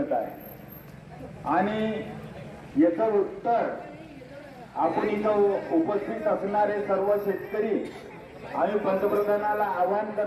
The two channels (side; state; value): both; identical; correlation 1.00